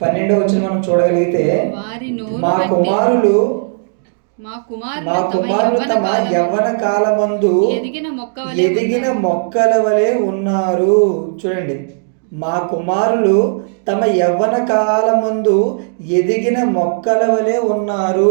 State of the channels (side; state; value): left; silent; digital silence